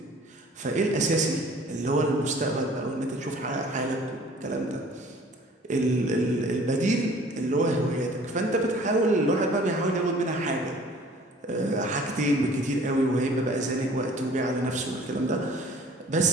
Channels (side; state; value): both; normal; correlation 0.51